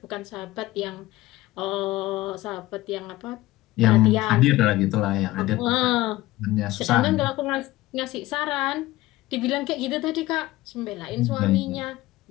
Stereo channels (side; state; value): right; quieter; 17.8 dB